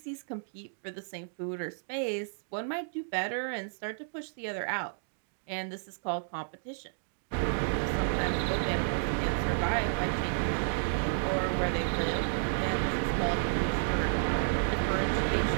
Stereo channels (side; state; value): left; silent; digital silence